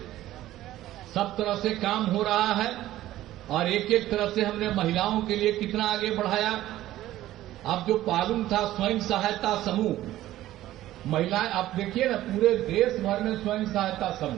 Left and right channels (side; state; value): left; quieter; 14.5 dB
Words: सब तरह से काम हो रहा है और एक एक तरह से हमने महिलाओं के लिए कितना आगे बढ़ाया। अब जो पालुम था स्वयं सहायता समूह, महिलाएं, आप देखिए ना पूरे देश भर में स्वयं सहायता